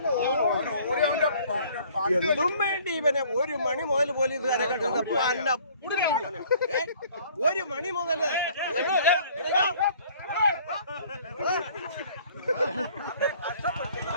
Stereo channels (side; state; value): both; inverted; correlation -0.55